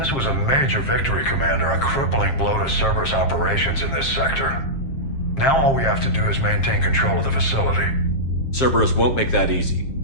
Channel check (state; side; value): late; right; 7.5 ms